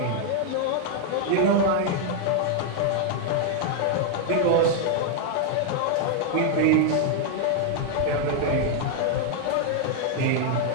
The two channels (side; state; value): both; different; correlation 0.00